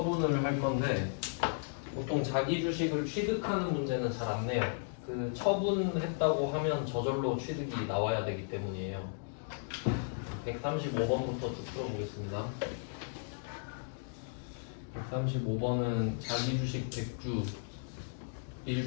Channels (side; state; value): right; silent; digital silence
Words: 할 건데 보통 자기 주식을 취득하는 문제는 잘 안 내요. 그 처분했다고 하면 저절로 취득이 나와야 되기 때문이에요. 135번부터 쭉 풀어보겠습니다. 135번은 자기 주식 100주